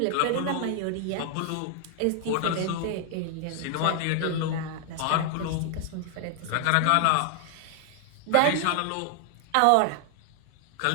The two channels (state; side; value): different; both; correlation 0.00